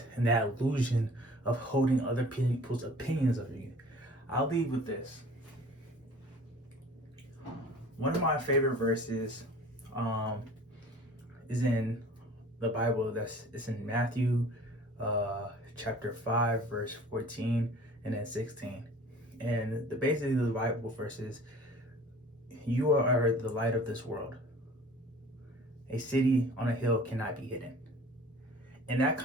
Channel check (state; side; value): normal; both; correlation 0.47